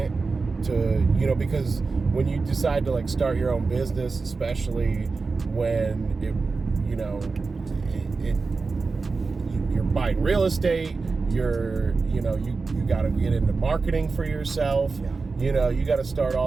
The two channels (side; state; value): left; quieter; 4.2 dB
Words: to, because when you decide to like start your own business, especially when you're buying real estate, you got to get into marketing for yourself. Yeah. You got to start